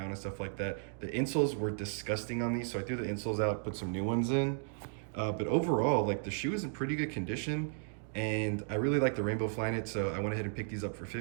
and stuff like that. The insoles were disgusting on these, so I threw the insoles out, put some new ones in. But overall, like, the shoe is in pretty good condition, and I really like the Rainbow Flyknit, so I went ahead and picked these up for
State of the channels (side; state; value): left; silent; digital silence